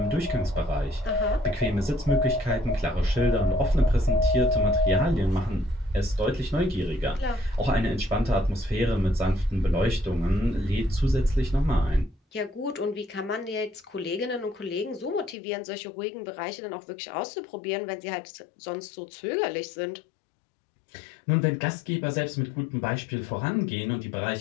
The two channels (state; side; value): drops out; right; at 15.4 s